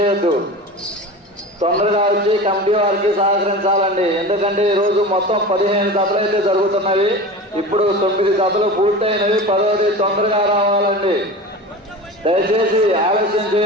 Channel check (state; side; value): normal; both; correlation 0.32